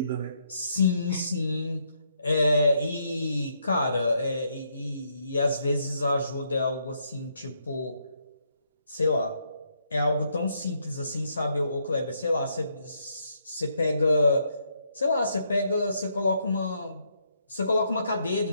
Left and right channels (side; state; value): both; inverted; correlation -0.75